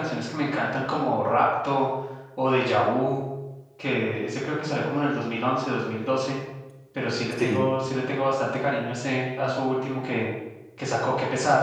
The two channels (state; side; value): identical; both; correlation 1.00